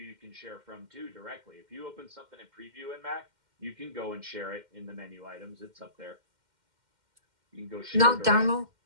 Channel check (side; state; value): left; late; 2.1 ms